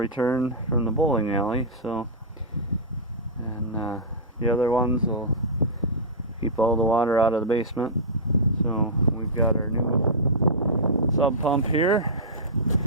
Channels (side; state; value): both; normal; correlation -0.13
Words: from the bowling alley. So, and the other ones will keep all the water out of the basement. So we've got our new sub pump here.